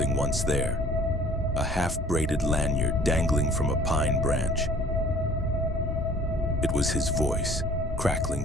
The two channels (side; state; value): both; normal; correlation 0.52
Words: once there. A half-braided lanyard dangling from a pine branch. It was his voice, crackling